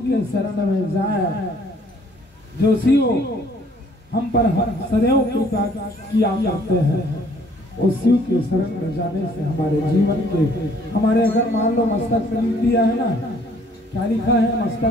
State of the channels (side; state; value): both; normal; correlation 0.60